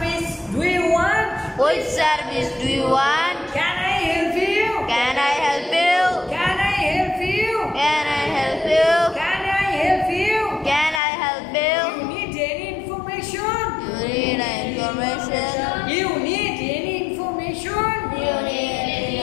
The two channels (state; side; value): drops out; right; at 11.0 s